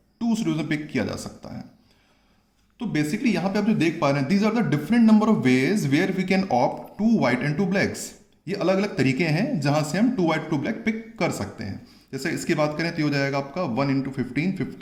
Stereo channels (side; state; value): both; identical; correlation 1.00